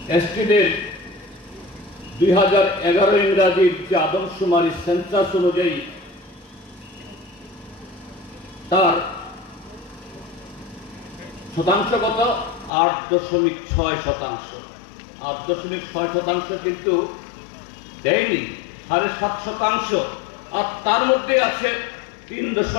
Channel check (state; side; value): drops out; right; at 12.7 s